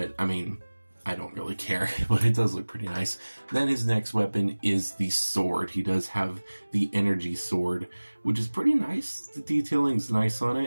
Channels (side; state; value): both; inverted; correlation -1.00